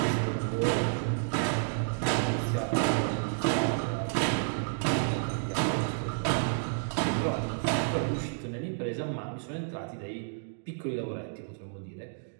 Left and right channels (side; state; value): left; silent; digital silence